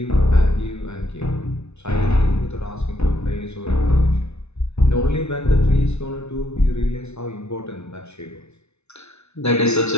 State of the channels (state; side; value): late; right; 0.81 ms